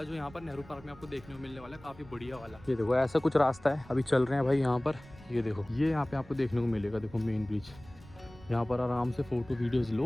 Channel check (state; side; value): noise; right; rumble, 20 dB below the sound